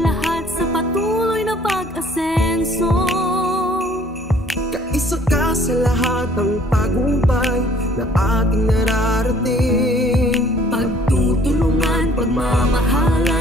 lahat sa patuloy na pag-asenso. Kaisa ka sa lahat ng tagumpay na ating nararating. Pagtutulungan,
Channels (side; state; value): both; normal; correlation 0.57